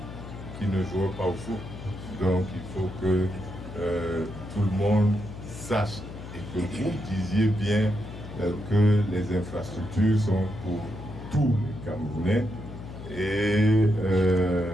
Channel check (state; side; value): noise; left; hum, 12 dB below the sound